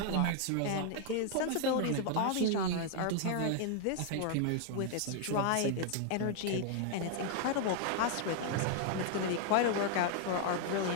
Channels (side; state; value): both; different; correlation 0.00